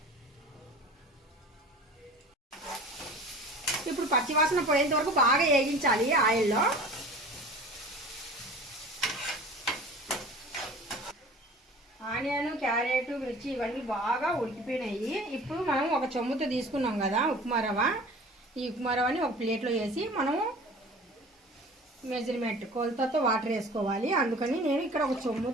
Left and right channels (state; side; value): normal; both; correlation 0.42